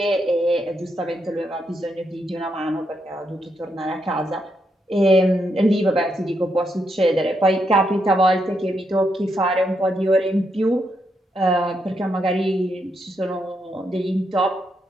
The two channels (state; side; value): normal; both; correlation 0.80